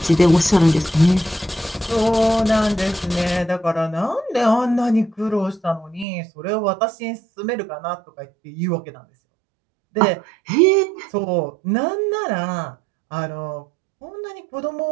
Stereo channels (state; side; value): drops out; left; at 6.1 s